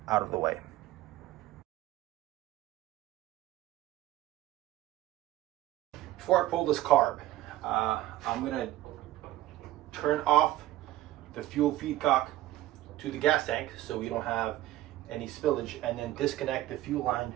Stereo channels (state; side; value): quieter; left; 15.2 dB